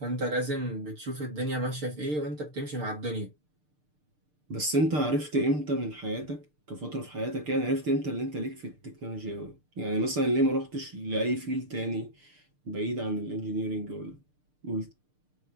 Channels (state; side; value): late; left; 6.6 ms